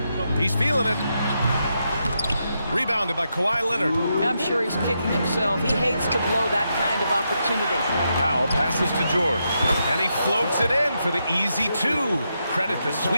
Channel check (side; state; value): both; inverted; correlation -0.83